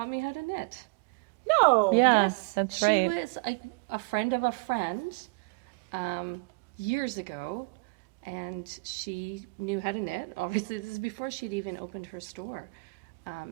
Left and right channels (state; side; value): quieter; left; 30.2 dB